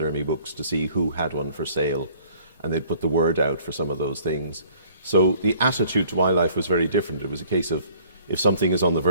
books to see who had one for sale, and they'd put the word out for some of those things. So the attitude to wildlife was very different. It was a case of, if something is on the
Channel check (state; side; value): inverted; both; correlation -0.56